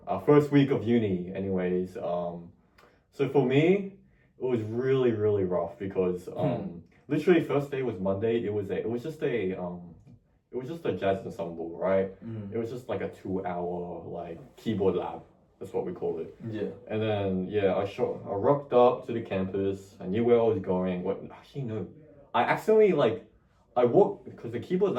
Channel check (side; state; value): both; identical; correlation 1.00